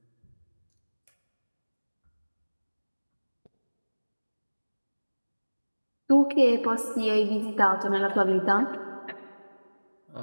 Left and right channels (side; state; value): both; inverted; correlation -1.00